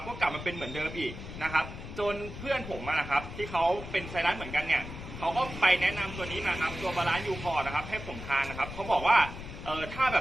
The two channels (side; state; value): left; noise; rumble, 10 dB below the sound